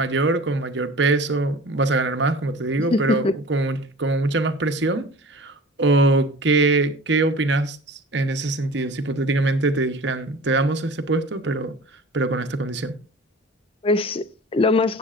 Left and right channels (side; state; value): both; normal; correlation 0.41